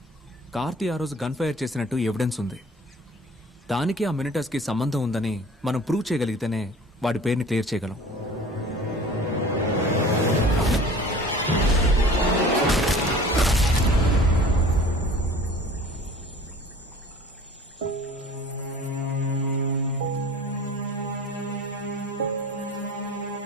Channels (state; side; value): normal; both; correlation 0.45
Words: కార్తీ ఆ రోజు గన్ ఫైర్ చేసినట్టు ఎవిడెన్స్ ఉంది. దానికి ఆ మినిటస్ కి సంబంధం ఉందని మనం ప్రూవ్ చేయగలిగితేనే వాడి పేరుని క్లియర్ చేయగలం.